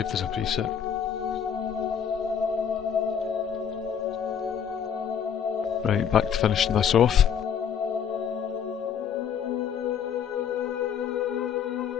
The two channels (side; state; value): right; quieter; 7.9 dB